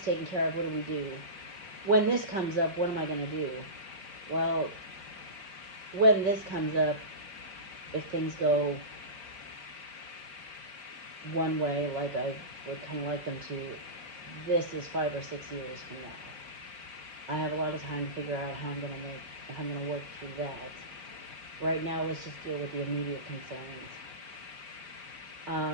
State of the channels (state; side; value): late; left; 4.9 ms